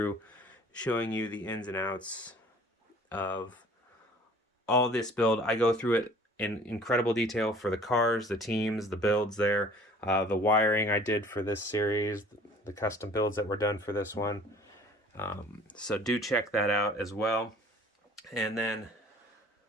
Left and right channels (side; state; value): both; normal; correlation 0.51